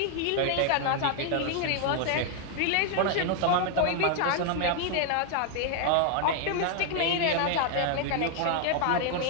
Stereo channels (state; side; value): different; both; correlation 0.00